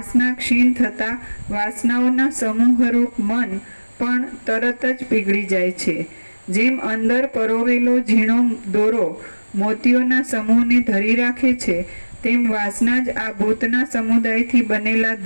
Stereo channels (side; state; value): both; inverted; correlation -1.00